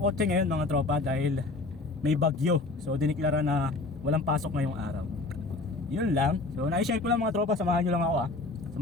ngayon mga tropa dahil may bagyo. So diniklara na walang pasok ngayong araw. Yun lang. So na-share ko lang mga tropa, samahan nyo lang ako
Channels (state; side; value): quieter; right; 3.4 dB